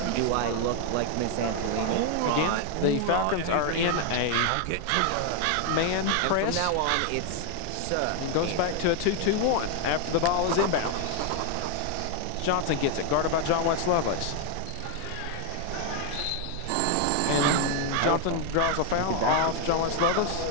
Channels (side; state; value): both; different; correlation 0.00